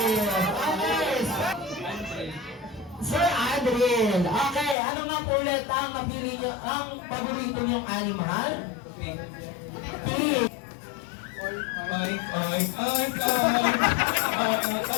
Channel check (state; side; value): drops out; right; at 4.8 s